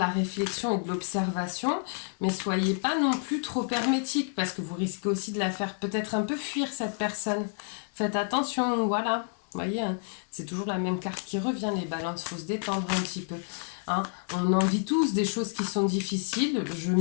réflexion et de l'observation, mais soyez pas non plus trop hermétique, parce que vous risquez aussi de la faire peut-être un peu fuir cette personne. Faites attention, voilà. Vous voyez, hein, c'est toujours la même carte qui revient, les balances, il faut se détendre un petit peu. Hein. On en vit tous des choses qui sont difficiles, je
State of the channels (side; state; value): right; silent; 58 dB below the other